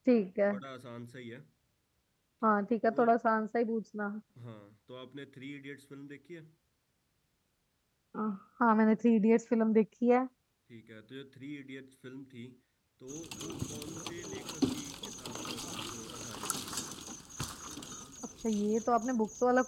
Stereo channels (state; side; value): identical; both; correlation 1.00